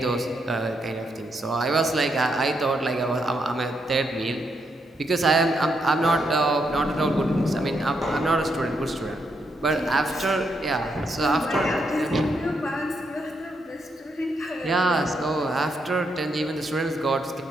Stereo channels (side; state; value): both; normal; correlation 0.79